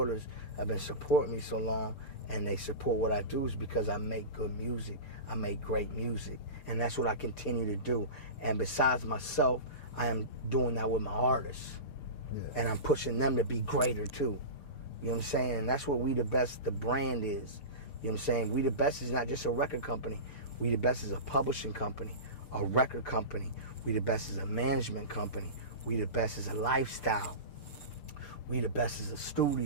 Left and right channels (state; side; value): late; right; 6.8 ms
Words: have been supporting me so long, and they support what I do, is because I make good music. I make great music. And that's what I continue to do. And besides myself, I am doing that with my artists. Yeah. And I'm pushing them to be greater too. You know what I'm saying? And that's what We The Best, the brand is. You know what I'm saying? We The Best is not just a record company. We The Best is a publishing company, a record company. We The Best is a management company. We The Best is a lifestyle. We The Best is a